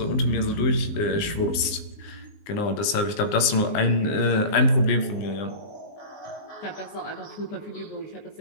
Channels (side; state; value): right; late; 19 ms